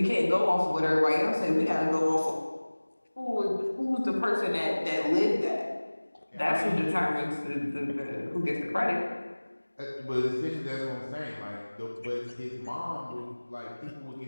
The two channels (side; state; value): both; inverted; correlation -1.00